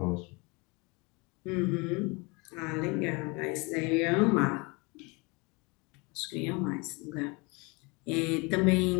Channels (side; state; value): right; quieter; 27.9 dB